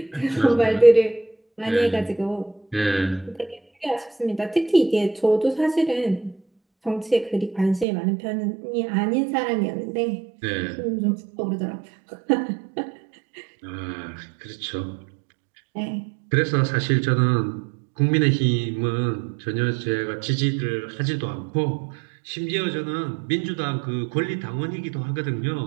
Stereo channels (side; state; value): left; drops out; at 7.9 s